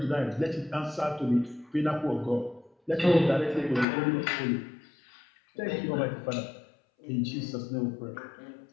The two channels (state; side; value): drops out; right; at 3.9 s